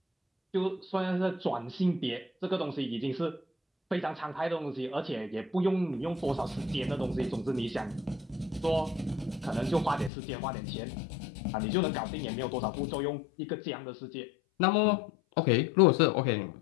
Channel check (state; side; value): drops out; right; at 10.1 s